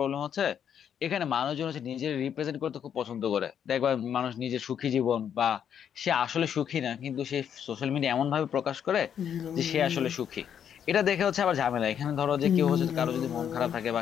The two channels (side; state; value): right; quieter; 8.6 dB